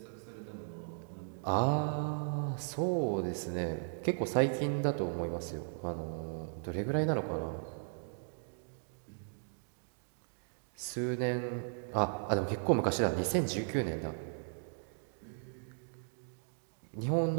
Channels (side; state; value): left; silent; digital silence